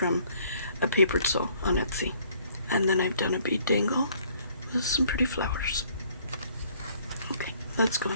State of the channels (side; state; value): both; inverted; correlation -0.61